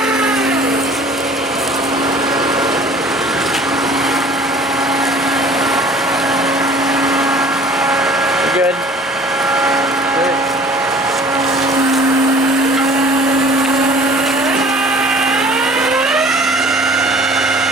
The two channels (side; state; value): both; normal; correlation 0.49